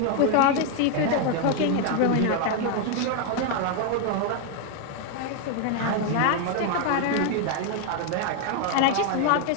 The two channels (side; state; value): both; different; correlation 0.01